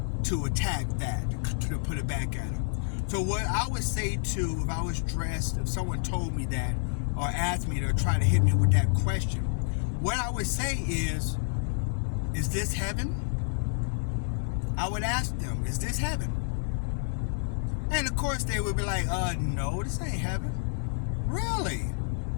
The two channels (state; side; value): silent; right; 59 dB below the other